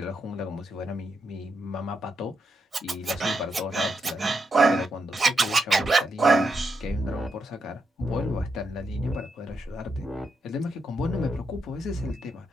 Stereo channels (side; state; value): both; normal; correlation 0.82